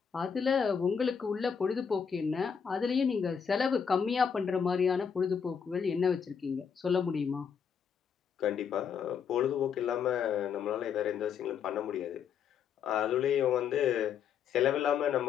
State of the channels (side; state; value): right; quieter; 7.0 dB